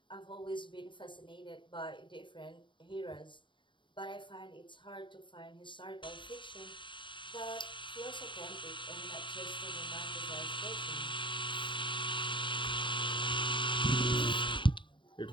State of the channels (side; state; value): right; late; 0.23 ms